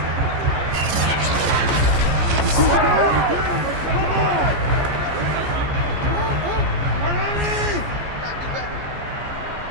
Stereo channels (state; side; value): late; left; 14 ms